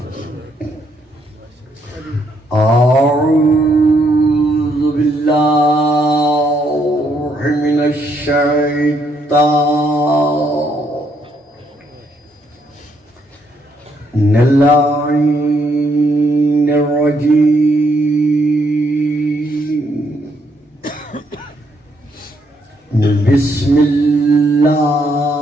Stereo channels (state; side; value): normal; both; correlation 0.73